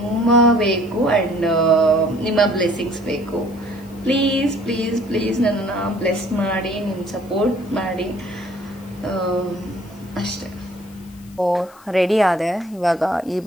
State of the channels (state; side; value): noise; left; hiss, 26 dB below the sound